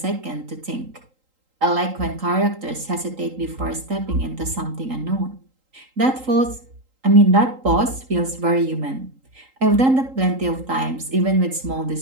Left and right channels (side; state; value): left; late; 3.8 ms